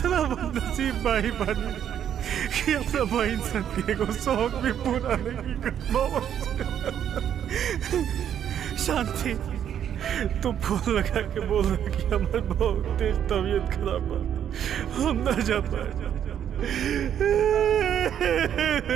बदनसीब भाई बनी कि अपना बहन सन के एगो शौक भी पूरा नहीं कर पावत। शांति, तू फोन लगा के बोल रहा कि हमारे बहुत तेज तबीयत खराब है, हम ना जा पाए।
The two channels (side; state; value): left; quieter; 9.5 dB